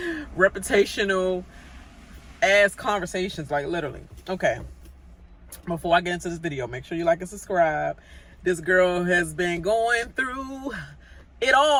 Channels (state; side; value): identical; both; correlation 1.00